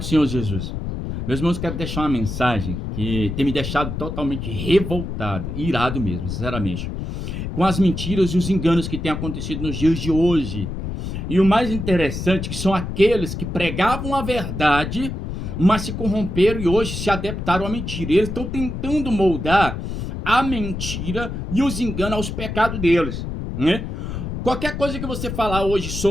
Senhor Jesus. Meus irmãos, quero deixar uma mensagem que tem me deixado totalmente revoltado, irado mesmo, sinceramente, com as mentiras e os enganos que têm acontecido nos dias de hoje. E o mais interessante que são aqueles que pregavam a verdade, mas se corromperam e hoje se adaptaram à mentira. Eles estão tentando moldar a mentira e os enganos aos pecados deles, né? Qualquer coisa que você falar hoje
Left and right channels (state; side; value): noise; left; rumble, 5 dB below the sound